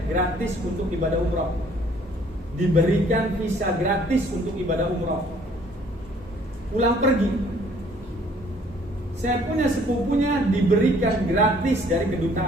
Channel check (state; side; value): normal; both; correlation 0.59